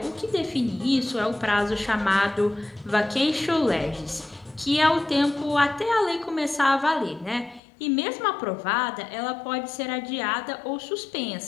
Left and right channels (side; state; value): right; drops out; at 7.6 s